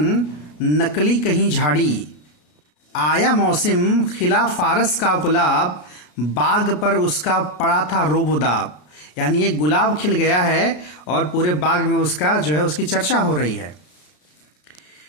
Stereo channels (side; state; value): right; late; 33 ms